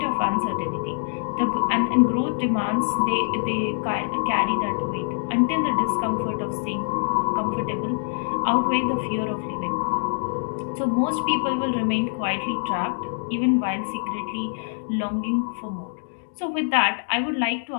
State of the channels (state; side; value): silent; right; digital silence